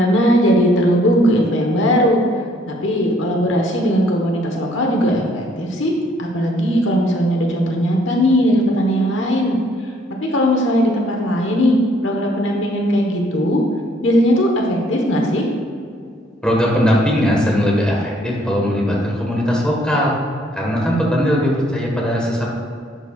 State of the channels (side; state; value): both; normal; correlation 0.64